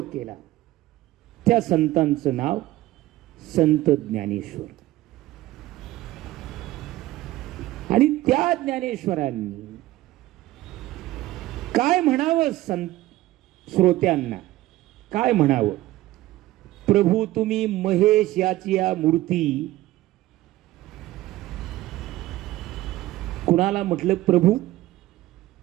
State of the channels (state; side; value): quieter; left; 16.5 dB